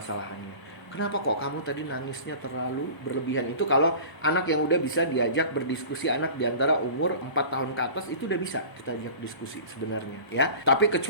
Kenapa kok kamu tadi nangisnya terlalu berlebihan? Itu kalau anak yang udah bisa diajak berdiskusi, anak di antara umur 4 tahun ke atas, itu udah bisa kita ajak diskusi sebenarnya ya. Tapi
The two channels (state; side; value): late; right; 1.0 ms